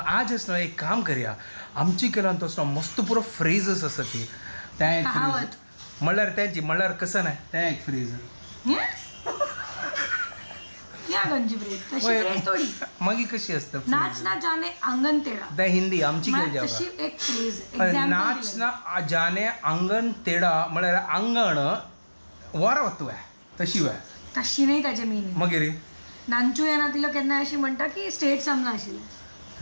आज ना एक काम करूया आमची केला तो मस्त पुरो फ्रेजेस आसा ती त्या म्हळ्यार त्यांची म्हळ्यार कसं नाही त्या एक फ्रेज मागी कशी असतं नाच ना जाने अंगण तेरा त्या हिंदी आमची एक फ्रेज नाच ना जाने अंगण तेडा म्हळ्यार अंगण वर वतू तशी वय तशी नाही त्याचे मीनिंग मागीर नांचू येना तिला केन्ना अशी म्हणटा की स्टेट सामना आशिल्लें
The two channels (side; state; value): both; inverted; correlation -1.00